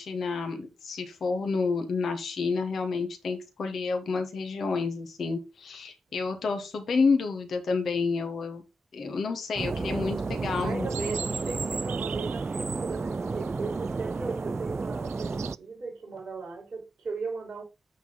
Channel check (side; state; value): both; normal; correlation 0.86